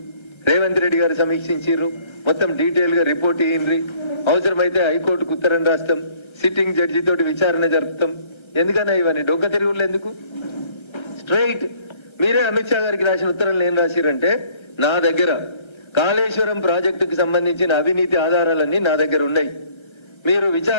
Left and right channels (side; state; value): right; late; 1.3 ms